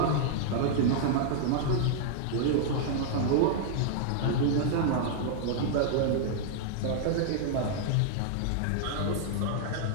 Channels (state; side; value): different; both; correlation -0.01